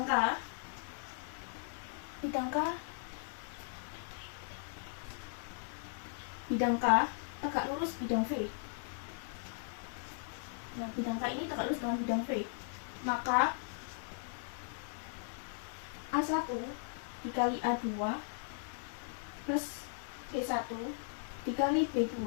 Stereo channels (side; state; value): right; silent; digital silence